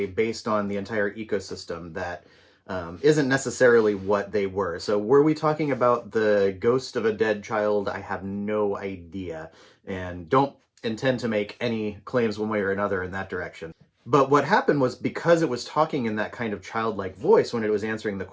based on the entire ecosystem that isn't necessarily what they were. So were we talking about the ghost of a dead child? I have no idea and don't intend to make any claims one way or another in that direction. But what happened was, because it was talking in that kind of childlike voice when it was answering the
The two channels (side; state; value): both; identical; correlation 1.00